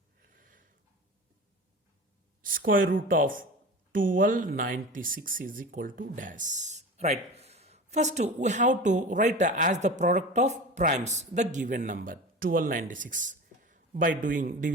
Square root of 1296 is equal to dash. Right. First, we have to write as the product of primes the given number 1296 by doing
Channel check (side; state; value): both; normal; correlation 0.33